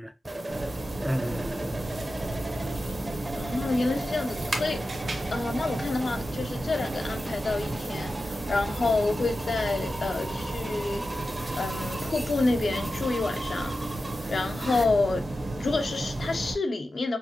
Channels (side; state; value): both; normal; correlation 0.92